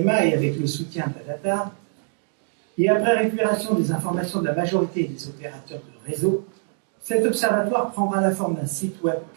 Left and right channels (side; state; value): left; silent; 58 dB below the other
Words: et avec le soutien de la data, et après récupération des informations de la majorité des opérateurs de réseau, cet observatoire prendra la forme d'un site web